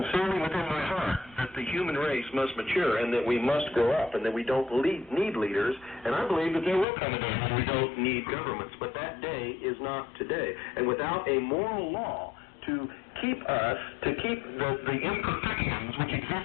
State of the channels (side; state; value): right; drops out; at 6.9 s